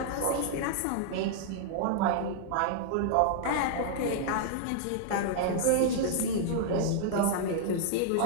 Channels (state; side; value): different; both; correlation -0.01